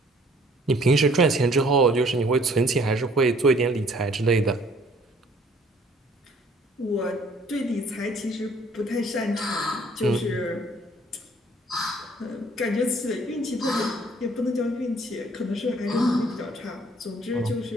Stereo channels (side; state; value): both; normal; correlation 0.59